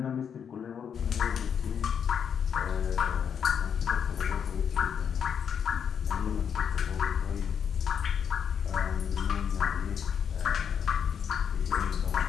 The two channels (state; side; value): quieter; right; 7.6 dB